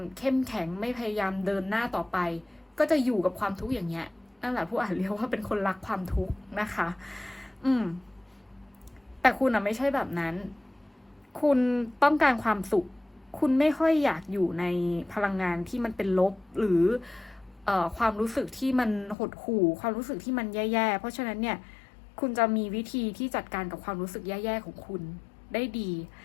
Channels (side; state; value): right; drops out; at 19.2 s